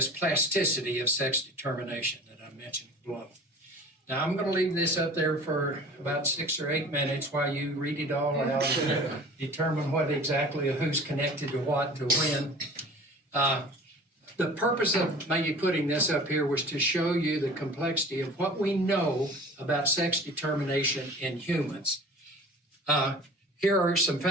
plasticity of sex determination that I mentioned below. Now, I'm going to leave this up there for about 6 or 8 minutes while you read it all out and determine what exactly who's connected to what to when. The purpose of maybe putting this up here was to show you the complexity of what we know about sex determination in humans. Here are some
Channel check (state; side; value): normal; both; correlation 0.42